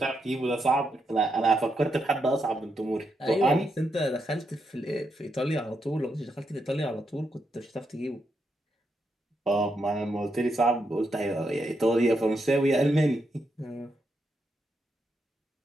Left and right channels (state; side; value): normal; both; correlation 0.82